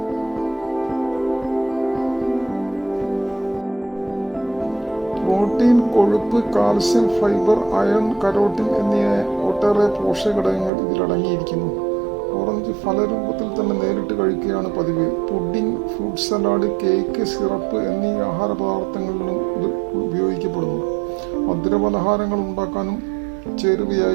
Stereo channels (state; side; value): drops out; left; at 10.7 s